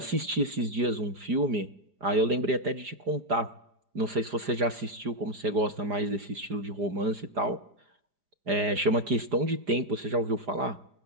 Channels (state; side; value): late; left; 4.9 ms